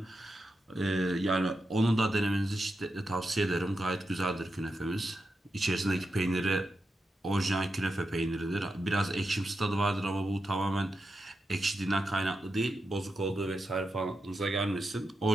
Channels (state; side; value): normal; both; correlation 0.88